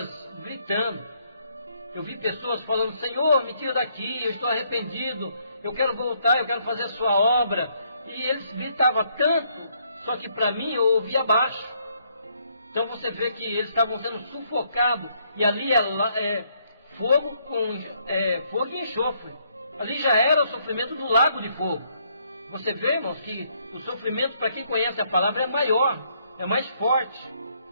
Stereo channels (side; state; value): both; inverted; correlation -0.71